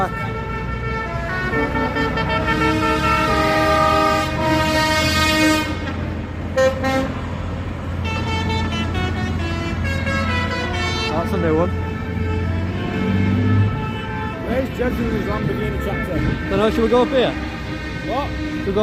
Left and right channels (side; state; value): both; identical; correlation 1.00